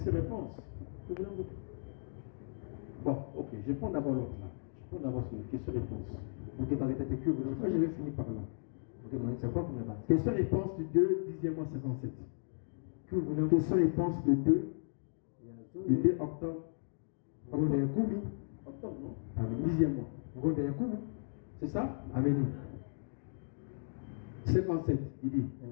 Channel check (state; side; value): silent; right; digital silence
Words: réponse? Bon, ok, je prends d'abord l'autre là. Je prends d'abord sur une question réponse. Je crois que je vais finir par là. Question réponse du 2, 10e mois 57. Question réponse du 2, le 2 octobre. Octobre, non? 10e mois. C'est ça? Amen. 57, il dit.